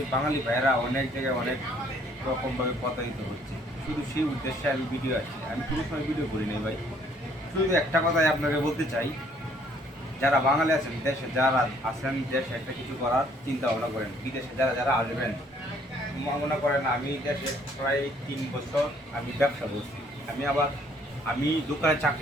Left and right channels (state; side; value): normal; both; correlation 0.62